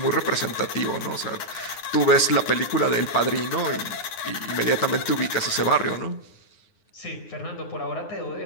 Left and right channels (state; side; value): late; right; 9.6 ms